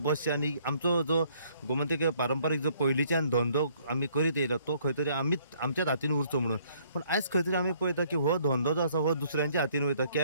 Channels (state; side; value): inverted; both; correlation -0.63